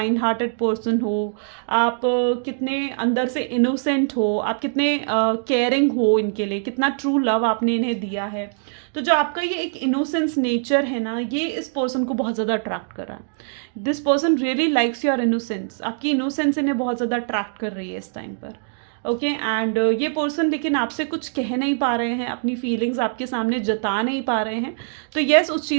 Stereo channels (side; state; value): left; silent; digital silence